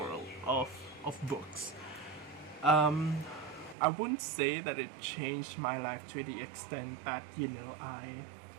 of books. I wouldn't say that it changed my life to the extent that, you know,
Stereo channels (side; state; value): left; drops out; at 3.8 s